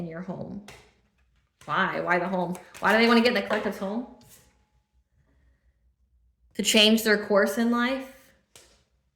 your home. Why? Why the home? Why do they want to get in the collective's home? To change their course in life?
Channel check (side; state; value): both; identical; correlation 1.00